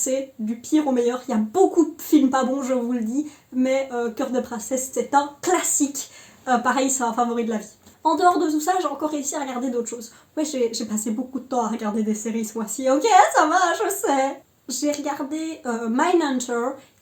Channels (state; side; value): identical; both; correlation 1.00